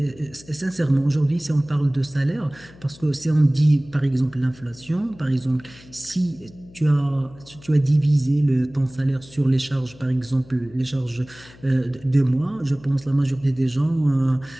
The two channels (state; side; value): noise; left; hum, 22 dB below the sound